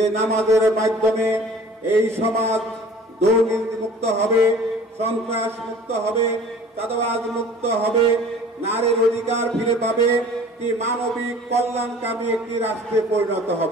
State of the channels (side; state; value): both; normal; correlation 0.47